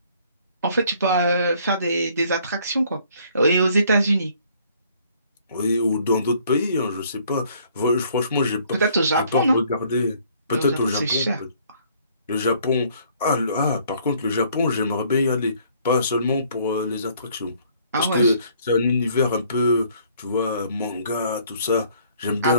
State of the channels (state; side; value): inverted; both; correlation -0.61